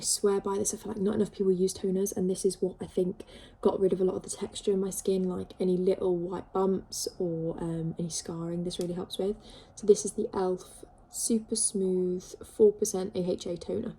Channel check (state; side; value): identical; both; correlation 1.00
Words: swear by this. I feel like not enough people use toners, and this is what I think got rid of a lot of the texture in my skin, like any little white bumps or any scarring. This really helps with. So this is the e.l.f. Super Smooth 4% AHA toner.